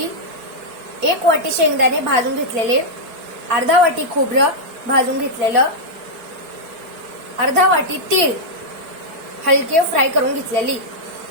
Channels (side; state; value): left; late; 4.5 ms